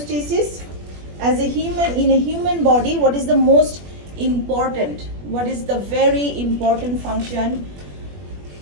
As a human, in a human body, what is the most important? What is the very important function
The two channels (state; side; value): late; left; 21 ms